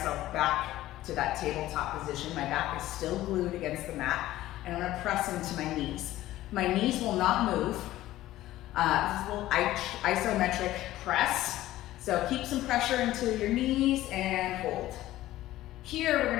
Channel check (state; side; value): quieter; right; 15.2 dB